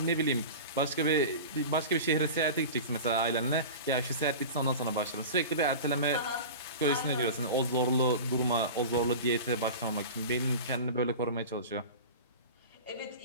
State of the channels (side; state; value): both; inverted; correlation -0.32